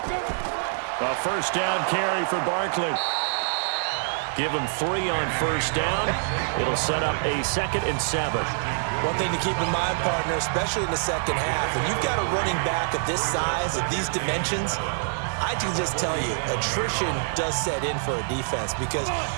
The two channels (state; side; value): silent; left; 61 dB below the other